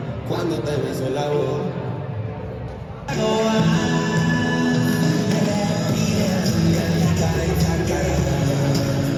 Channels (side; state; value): both; identical; correlation 1.00